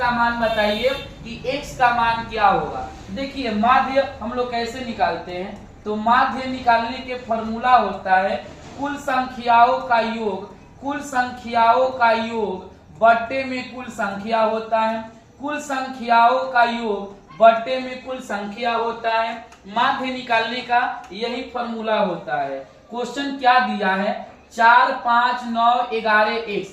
मान बताइए कि x का मान क्या होगा। देखिए माध्य हम लोग कैसे निकालते हैं, तो माध्य निकालने के फॉर्मूला होता है कुल संख्याओं का योग, कुल संख्याओं का योग बट्टे में कुल संख्या होता है, कुल संख्याओं का योग बट्टे में कुल संख्या होता है। माध्य निकालने का यही फॉर्मूला होता है। क्वेश्चन क्या दिया है, 4, 5, 9, 11, 1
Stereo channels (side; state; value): both; identical; correlation 1.00